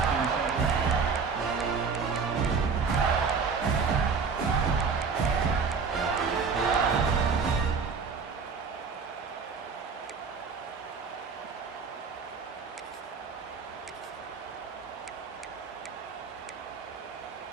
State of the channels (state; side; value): quieter; left; 5.4 dB